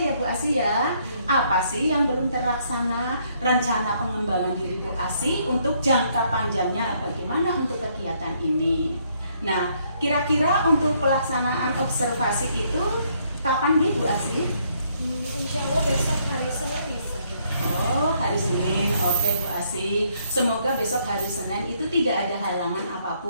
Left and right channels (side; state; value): both; inverted; correlation -0.70